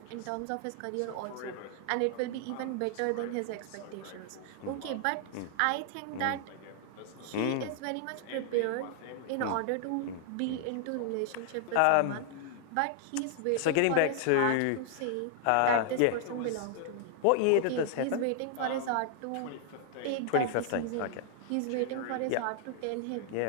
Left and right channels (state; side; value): different; both; correlation 0.00